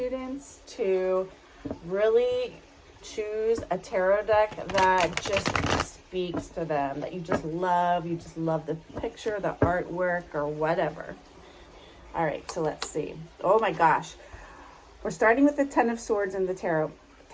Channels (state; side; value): identical; both; correlation 1.00